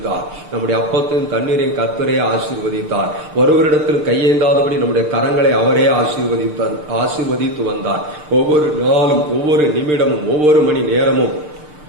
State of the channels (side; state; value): left; late; 6.7 ms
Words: நம்முடைய அப்பத்தையும் தண்ணீரையும் கர்த்தரே ஆசீர்வதித்தார். ஒருவரிடத்தில் கையேந்தாதபடி நம்முடைய கரங்களை அவரே ஆசீர்வதித்து வந்தார். ஒவ்வொரு நாளும், ஒவ்வொரு நிமிடமும், ஒவ்வொரு மணி நேரமும்